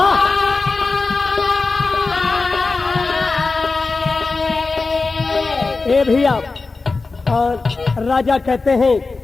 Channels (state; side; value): quieter; right; 3.9 dB